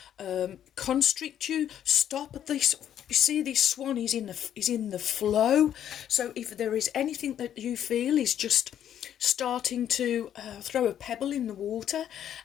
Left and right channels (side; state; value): right; quieter; 10.2 dB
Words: constrict you, stop this. You see, this swan is in the flow. So if there is anything that you feel is just starting to throw a pebble in the water,